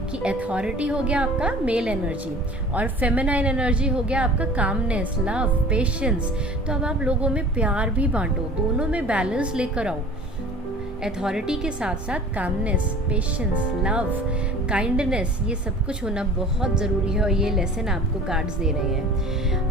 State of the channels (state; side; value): normal; both; correlation 0.44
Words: कि अथॉरिटी हो गया आपका मेल एनर्जी, और फेमिनाइन एनर्जी हो गया आपका कामनेस, लव, पेशेंस। तो अब आप लोगों में प्यार भी बांटो, दोनों में बैलेंस लेकर आओ। अथॉरिटी के साथ साथ कामनेस, पेशेंस, लव, काइंडनेस, ये सब कुछ होना बहुत ज़रूरी है, और ये लेसन आपको कार्ड्स दे रहे